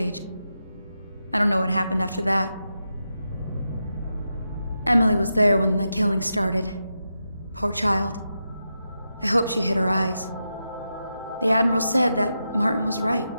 I don't know what happened after that. Emily was there when the killing started. Poor child. I hope she hid her eyes. The Admiral said that Martin was right.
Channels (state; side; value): inverted; both; correlation -0.88